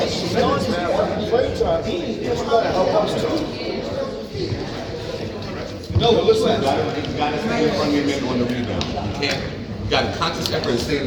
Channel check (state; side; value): identical; both; correlation 1.00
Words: see minutes, man. I want to play time. It's going to help us too. No, listen. You got to stay in front of your man on the rebound. You can't. You got to conscious effort and stay in